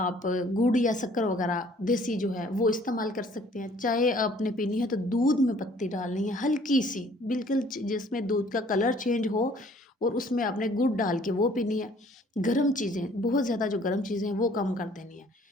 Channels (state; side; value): normal; both; correlation 0.57